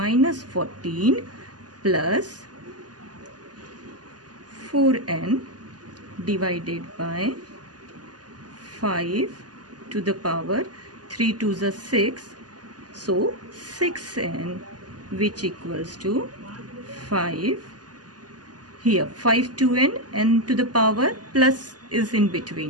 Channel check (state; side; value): late; left; 0.69 ms